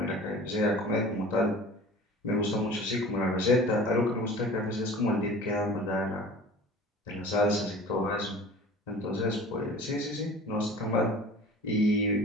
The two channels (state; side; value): normal; both; correlation 0.42